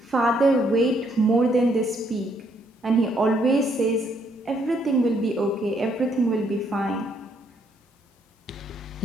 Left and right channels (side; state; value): both; normal; correlation 0.71